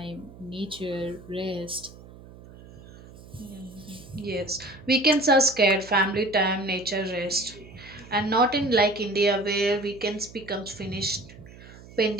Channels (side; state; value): right; noise; hum, 19 dB below the sound